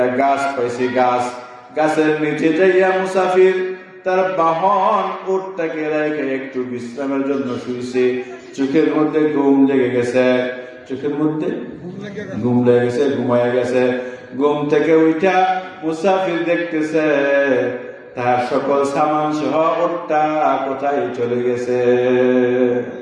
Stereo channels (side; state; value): both; identical; correlation 1.00